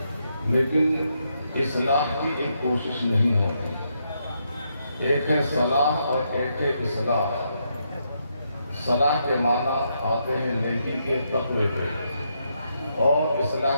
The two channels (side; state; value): both; inverted; correlation -0.79